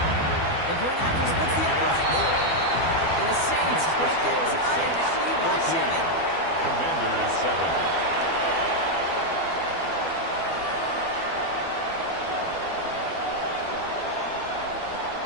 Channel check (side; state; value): right; late; 12 ms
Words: The point after splits the upright. And the Saints break that tie and now lead by 7. Commanders 7.